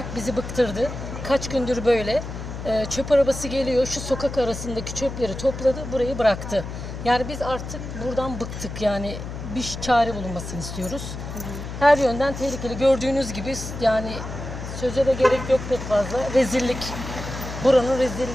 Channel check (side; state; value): left; noise; hum, 8 dB below the sound